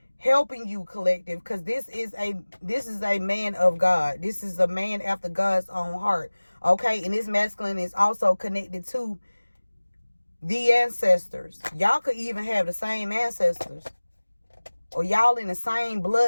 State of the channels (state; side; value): inverted; both; correlation -1.00